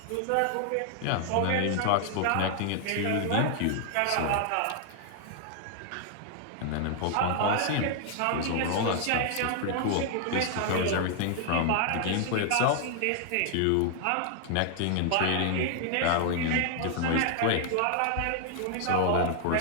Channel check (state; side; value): different; both; correlation 0.00